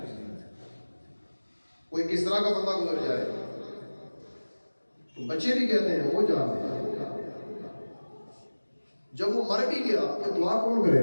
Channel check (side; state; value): both; inverted; correlation -1.00